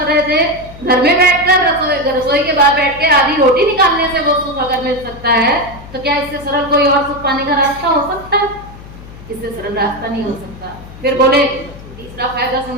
रहे थे। घर में बैठकर, रसोई के बाहर बैठ के आधी रोटी निकालने से वो सुख अगर मिल सकता है, तो क्या इससे सरल कोई और सुख पाने का रास्ता हो सकता है? इससे सरल रास्ता नहीं हो सकता। फिर बोले तीसरा फायदा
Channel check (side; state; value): left; noise; hum, 17 dB below the sound